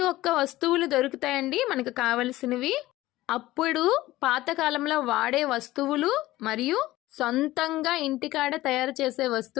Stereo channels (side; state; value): right; quieter; 16.9 dB